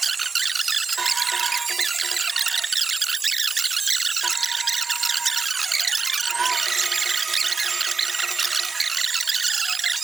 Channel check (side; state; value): left; quieter; 4.5 dB